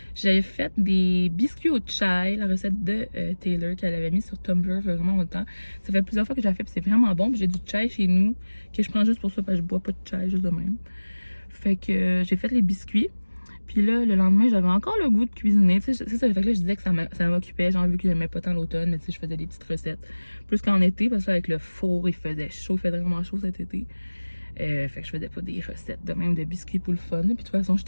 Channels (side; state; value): both; inverted; correlation -1.00